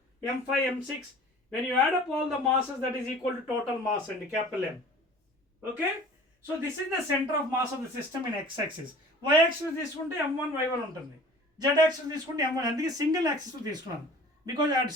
m5, m6, when you add up all the masses, that is equal to total mass and capital M. Okay? So this is the center of mass of the system in x-axis. Y-axis తీసుకుంటే m1 y1 ఉంటుంది. Z-axis తీసుకుంటే m1. అందుకే single axis తీసుకున్నాను. Because అది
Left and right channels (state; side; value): normal; both; correlation 0.45